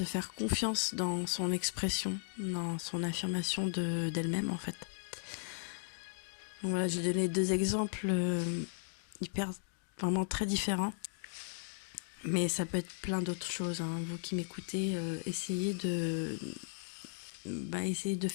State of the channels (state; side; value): silent; right; digital silence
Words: faire confiance dans son expression, dans son affirmation d'elle-même, en fait. Donc voilà, j'ai donné 2 exemples vraiment très différents. Mais ça peut être plein d'autres choses, hein. Vous qui m'écoutez, essayez de